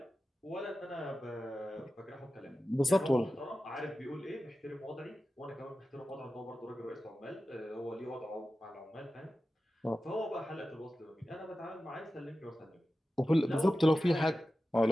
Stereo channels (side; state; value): both; normal; correlation 0.94